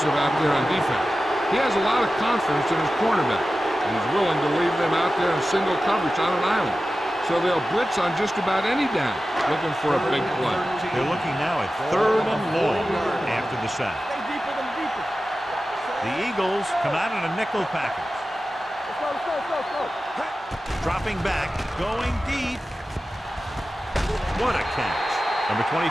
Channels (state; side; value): normal; both; correlation 0.94